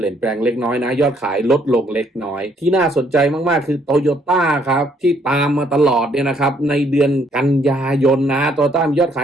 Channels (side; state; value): both; normal; correlation 0.67